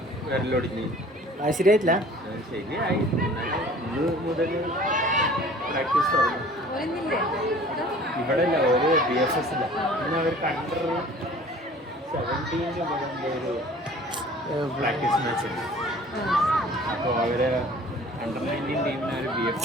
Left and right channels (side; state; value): both; normal; correlation 0.48